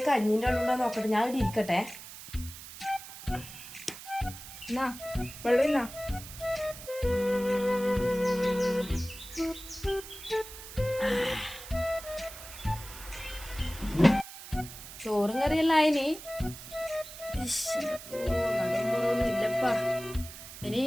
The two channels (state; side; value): noise; right; hiss, 14 dB below the sound